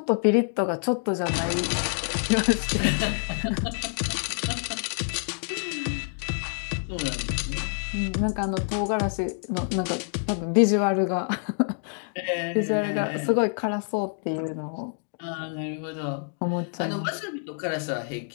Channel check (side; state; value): right; silent; 60 dB below the other